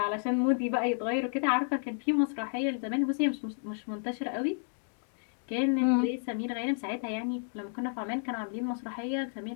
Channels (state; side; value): silent; right; 57 dB below the other